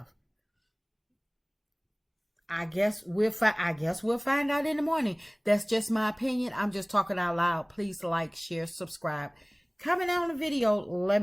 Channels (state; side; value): identical; both; correlation 1.00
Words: I guess we'll find out in the morning. That's just my opinion. I'm just talking out loud. Please like, share, subscribe. Comment on the video. Let